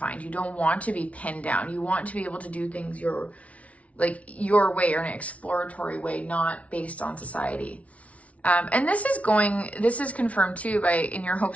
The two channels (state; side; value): late; right; 0.065 ms